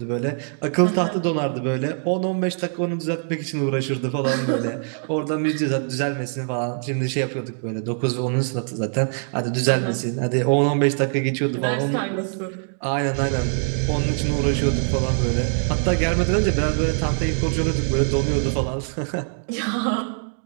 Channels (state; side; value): silent; left; digital silence